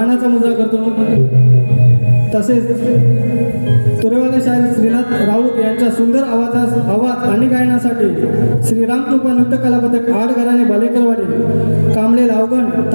मुद्रा करतो. तसेच तुरेवाले शाहीर श्रीनाथ राऊत यांच्या सुंदर आवाज आणि गायनासाठी श्रीराम कृपा नृत्य कला पथक आडघराणे बालेकरवाडी कांबळे लावगण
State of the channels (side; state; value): both; inverted; correlation -1.00